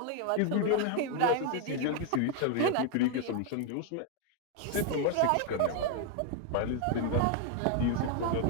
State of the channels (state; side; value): different; both; correlation 0.01